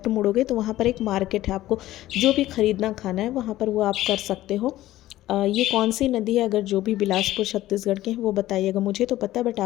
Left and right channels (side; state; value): right; quieter; 15.1 dB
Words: मुड़ोगे तो वहाँ पर एक मार्केट है, आपको जो भी ख़रीदना खाना है वहाँ पर वो आप कर सकते हो। ये कौन सी नदी है, अगर जो भी बिलासपुर छत्तीसगढ़ के हैं वो बताइएगा। मुझे तो पता है, बट